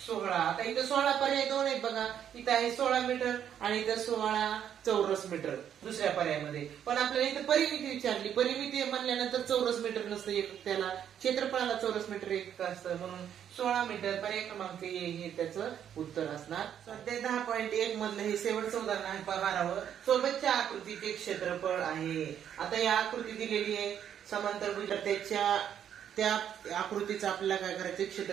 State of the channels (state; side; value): quieter; left; 9.3 dB